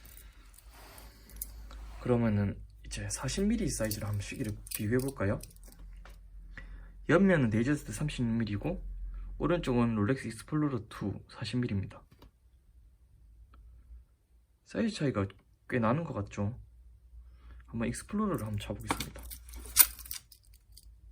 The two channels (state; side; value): identical; both; correlation 1.00